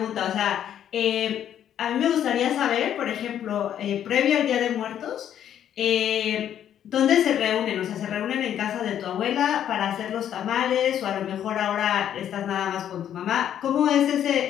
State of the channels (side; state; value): right; quieter; 10.1 dB